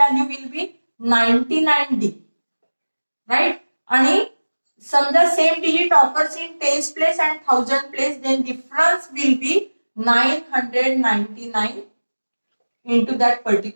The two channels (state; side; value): inverted; both; correlation -1.00